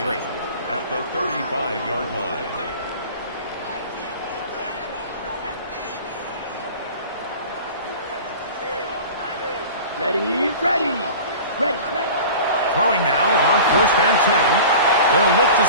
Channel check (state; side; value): inverted; both; correlation -0.38